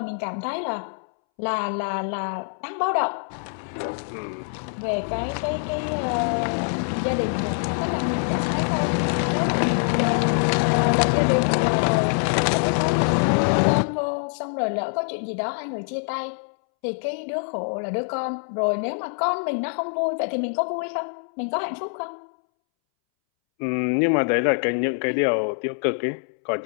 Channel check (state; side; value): silent; right; 62 dB below the other